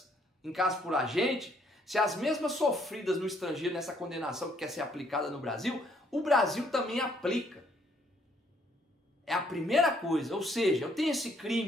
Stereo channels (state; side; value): normal; both; correlation 0.67